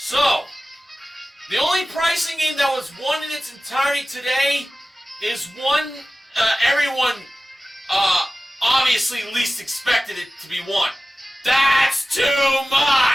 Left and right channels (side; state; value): both; normal; correlation 0.96